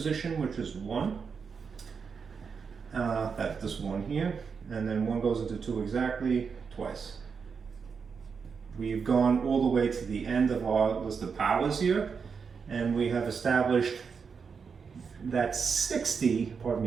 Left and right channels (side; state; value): left; quieter; 5.8 dB